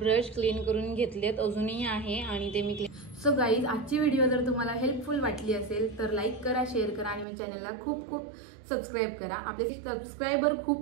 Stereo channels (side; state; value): left; drops out; at 7.2 s